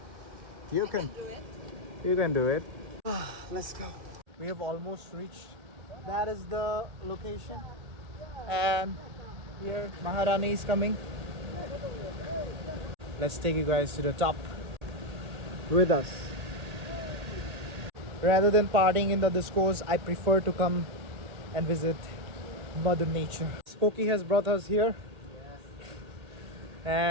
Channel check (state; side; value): late; left; 1.9 ms